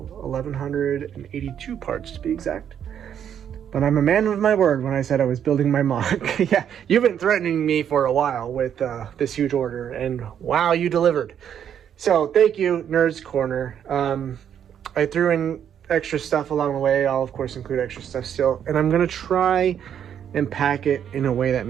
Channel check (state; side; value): quieter; left; 9.0 dB